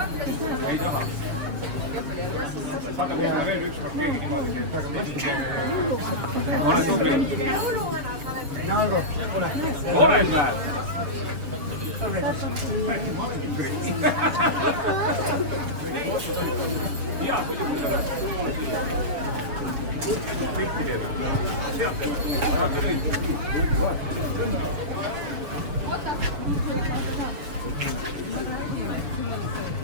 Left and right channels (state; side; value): late; left; 6.9 ms